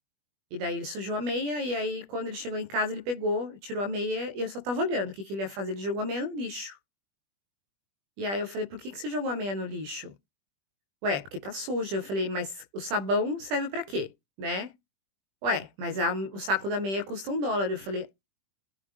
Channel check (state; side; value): late; left; 20 ms